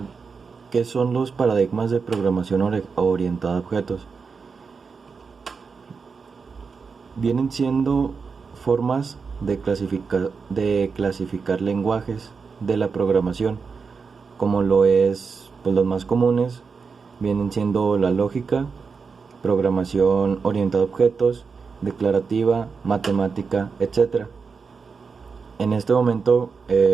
¿qué son los paradigmas de programación orientada a objetos? Vienen siendo formas de clasificar lenguajes de la programación, como lo es, pues los más comunes vienen siendo la lógica, programación orientada a objetos, declarativa, matemática, etc. En este momento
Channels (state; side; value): quieter; left; 5.2 dB